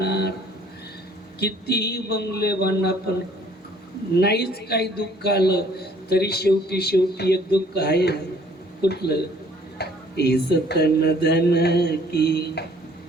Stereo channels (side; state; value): both; normal; correlation 0.58